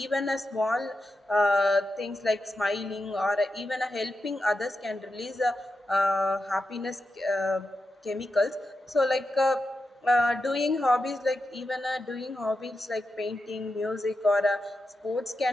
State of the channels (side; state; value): both; normal; correlation 0.89